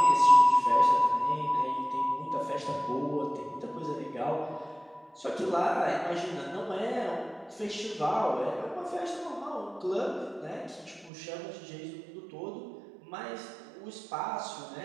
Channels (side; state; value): left; drops out; at 11.1 s